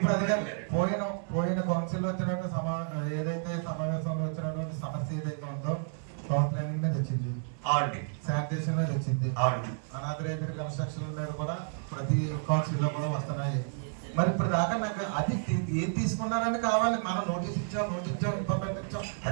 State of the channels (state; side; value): silent; left; 57 dB below the other